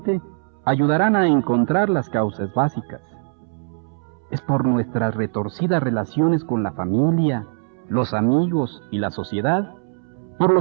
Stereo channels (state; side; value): silent; left; 64 dB below the other